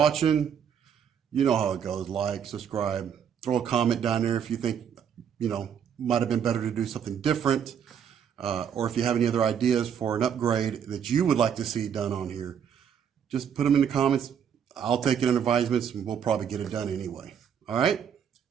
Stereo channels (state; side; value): quieter; left; 8.2 dB